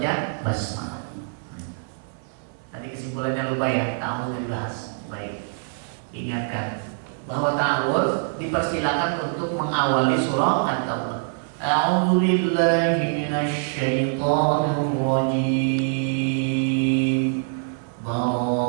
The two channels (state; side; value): silent; left; 58 dB below the other